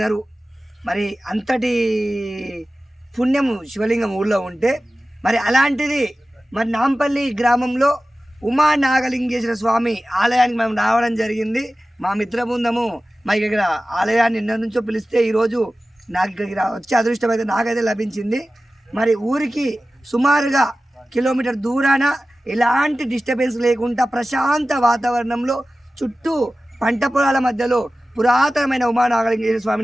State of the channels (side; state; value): both; normal; correlation 0.95